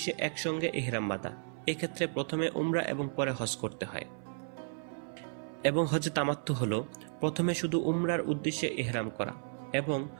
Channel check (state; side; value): silent; left; 55 dB below the other